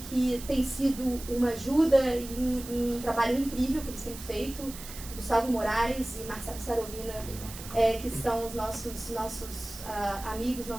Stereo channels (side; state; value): right; noise; hiss, 13 dB below the sound